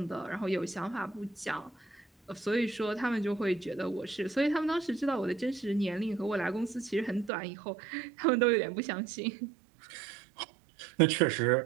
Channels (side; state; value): left; drops out; at 7.3 s